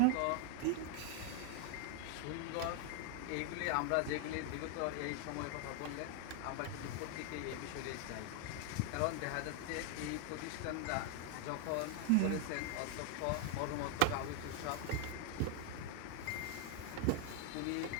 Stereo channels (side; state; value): both; different; correlation 0.00